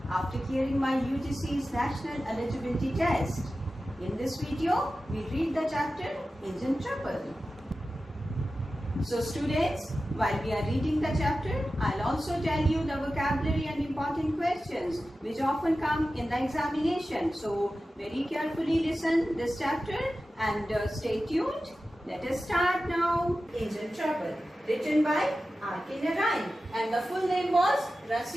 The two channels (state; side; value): normal; both; correlation 0.94